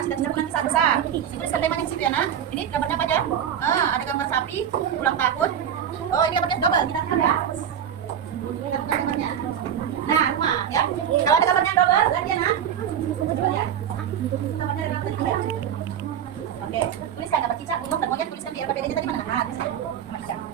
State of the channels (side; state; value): left; quieter; 9.1 dB